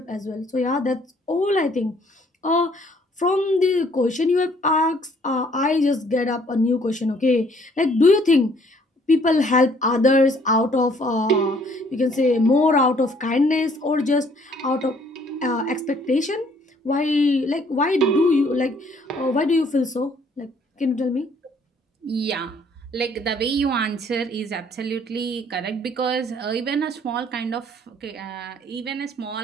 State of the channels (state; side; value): normal; both; correlation 0.62